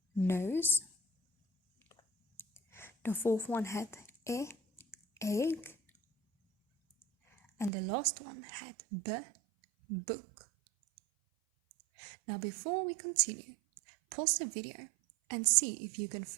nose. The fourth one had e, egg. And the last one had b, book. Now before we continue, pause the video and see if you can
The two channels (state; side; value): drops out; left; at 7.7 s